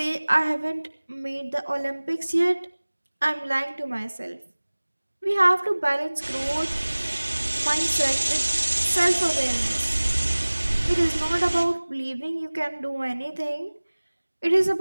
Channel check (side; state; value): both; inverted; correlation -1.00